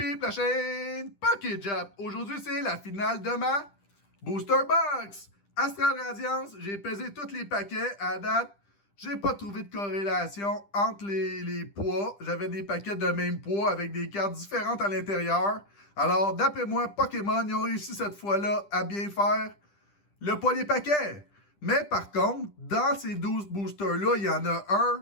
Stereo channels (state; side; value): late; right; 10 ms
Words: la chaîne Poké Jap. Aujourd'hui, c'est la finale de ma Booster Box. Astral Radiance, j'ai pesé tous les paquets à date. J'ai pas trouvé de corrélation entre les poids. J'avais des paquets de même poids avec des cartes différentes à l'intérieur. Alors, d'après moi, Pokémon, ils ont réussi cette fois-là à bien faire le poids des paquets. Mais par contre, dans ces 12 boosters-là, il y en a